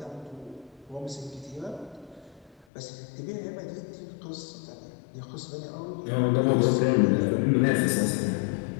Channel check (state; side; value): drops out; right; at 2.7 s